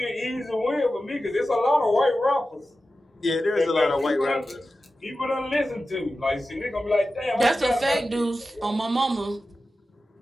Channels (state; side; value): normal; both; correlation 0.93